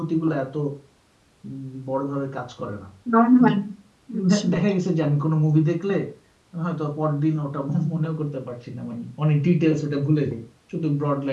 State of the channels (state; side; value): identical; both; correlation 1.00